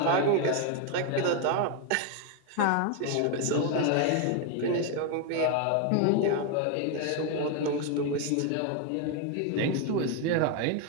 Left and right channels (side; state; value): both; different; correlation 0.01